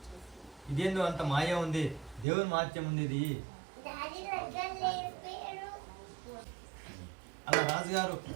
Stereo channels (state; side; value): drops out; left; at 2.2 s